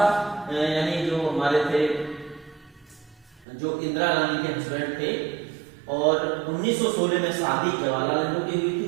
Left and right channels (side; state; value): left; drops out; at 3.5 s